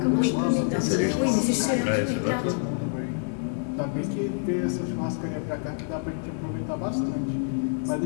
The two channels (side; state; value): right; silent; digital silence